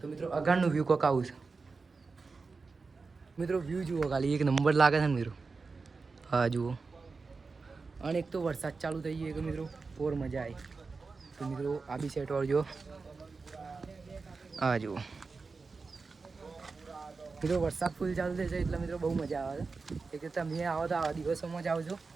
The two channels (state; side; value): quieter; left; 4.3 dB